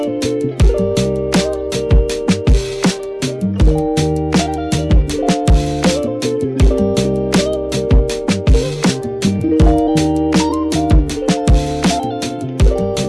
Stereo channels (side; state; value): both; identical; correlation 1.00